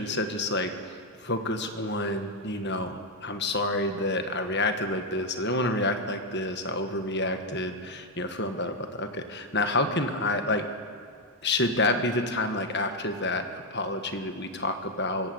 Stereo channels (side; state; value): both; normal; correlation 0.03